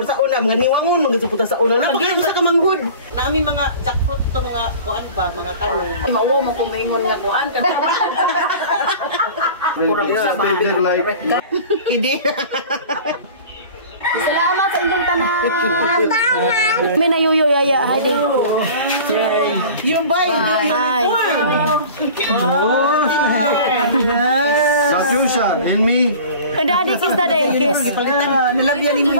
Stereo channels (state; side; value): inverted; both; correlation -0.41